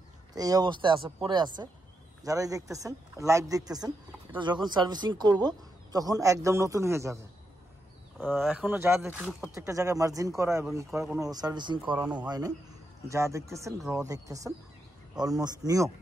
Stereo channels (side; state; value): both; normal; correlation 0.83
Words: তো এই অবস্থায় আছে, পরে আছে। যারাই দেখতেছেন লাইভ দেখতেছেন, এটা যখন সার্ভিসিং করব তখন একদম নতুন হয়ে যাবে। এখনও যা দেখতেছেন প্রত্যেকটা জায়গায় মার্জিন করা এবং কোনো সার্ভিসিং করানো হয় নাই। যা দেখতেছেন র দেখতেছেন, অলমোস্ট নিউ,